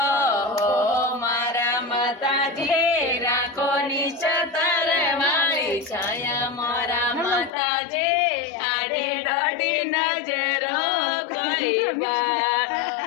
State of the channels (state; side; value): drops out; right; at 7.5 s